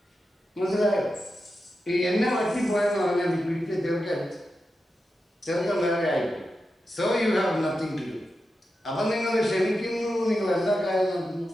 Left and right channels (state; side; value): normal; both; correlation 0.90